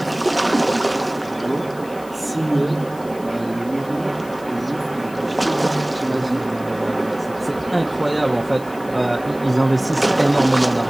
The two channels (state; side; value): noise; left; hiss, 22 dB below the sound